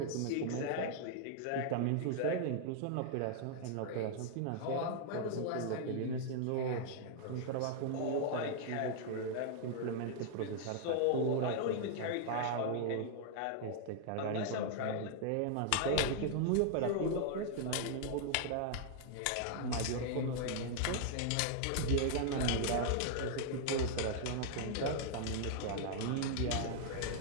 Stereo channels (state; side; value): different; both; correlation -0.01